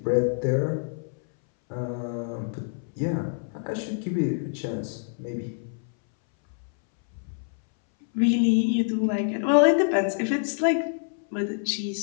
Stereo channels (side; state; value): right; silent; 61 dB below the other